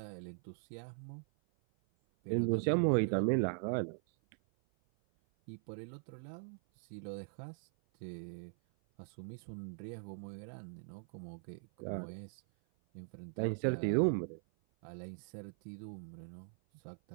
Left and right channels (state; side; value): silent; left; 51 dB below the other